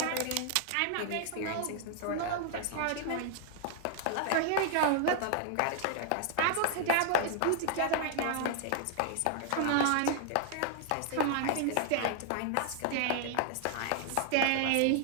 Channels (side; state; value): both; different; correlation 0.00